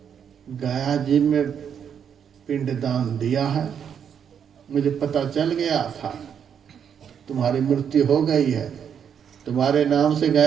गया जी में पिंडदान दिया है। मुझे पता चल गया था तुम्हारी मृत्यु हो गई है। तुम्हारे नाम से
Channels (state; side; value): quieter; left; 8.0 dB